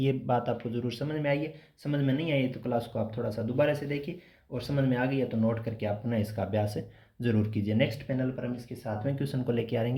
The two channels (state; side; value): identical; both; correlation 1.00